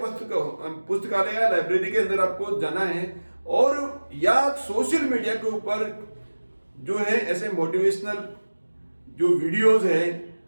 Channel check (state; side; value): inverted; both; correlation -1.00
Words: पुस्तकालय या लाइब्रेरी के अंदर आपको जाना है, और या सोशल मीडिया के ऊपर जो है ऐसे मोटिवेशनल जो वीडियोस है